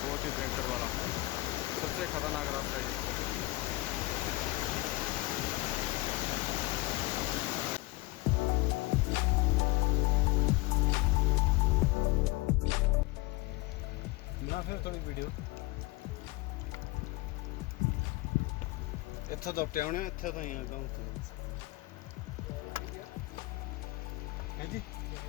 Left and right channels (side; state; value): right; quieter; 20.9 dB